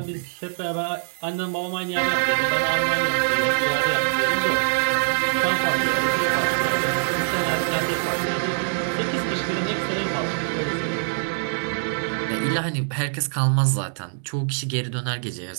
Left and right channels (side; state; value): left; silent; digital silence